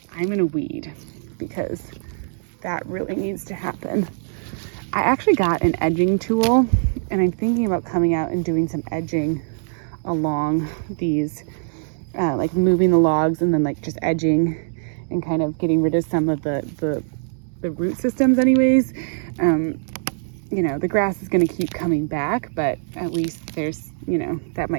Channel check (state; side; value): silent; left; digital silence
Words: I'm gonna weed because that really needs to happen. I actually got an edging tool and I'm thinking about coming out and doing some edging along these, like moving the logs and then like just edging and kind of getting rid of some of the root systems anyways. You know, the grass is going to keep coming back, but at least there's, you know, that